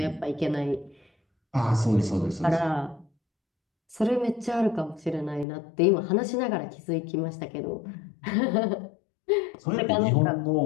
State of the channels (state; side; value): drops out; right; at 5.5 s